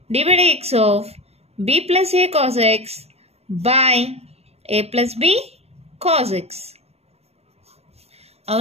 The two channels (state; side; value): late; left; 0.30 ms